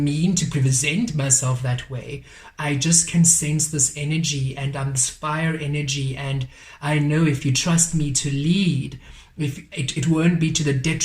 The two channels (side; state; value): both; identical; correlation 1.00